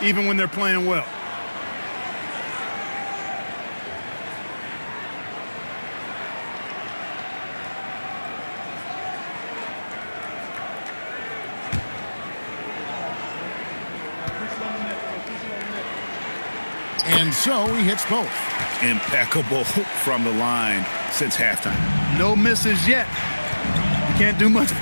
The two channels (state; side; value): inverted; both; correlation -1.00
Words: even when they're playing well. And so he hits both. Impeccable from the line since halftime. No misses yet. You can't do much